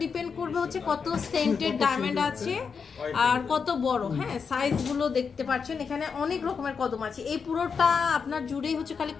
ডিপেন্ড করবে হচ্ছে কত সেন্টের ডায়মন্ড আছে আর কত বড়। হ্যাঁ, সাইজগুলো দেখতে পাচ্ছেন, এখানে অনেক রকমের কদম আছে। এই পুরোটা আপনার জুড়েই হচ্ছে খালি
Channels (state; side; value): quieter; right; 5.9 dB